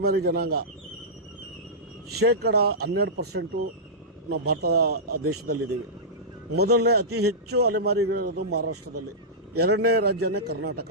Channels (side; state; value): both; normal; correlation -0.15